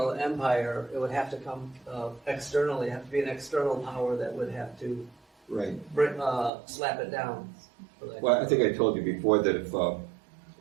empire, it would have to come externally. It would have to be an external power that would have to Right. slap it down. Well, I think I told you before that if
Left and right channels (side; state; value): left; drops out; at 6.5 s